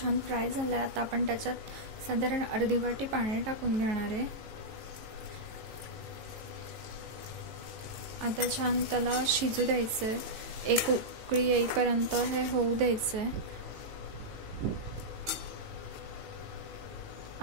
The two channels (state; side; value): late; left; 18 ms